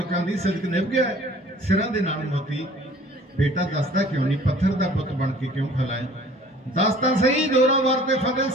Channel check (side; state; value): both; normal; correlation 0.50